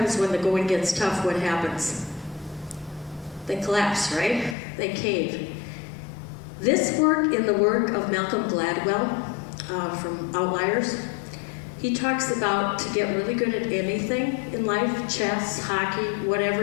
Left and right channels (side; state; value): right; drops out; at 4.5 s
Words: when the going gets tough, what happens? They collapse, right? They cave. This work in the work of Malcolm Gladwell from Outliers, he talks about to get really good at anything in life, chess, hockey, whatever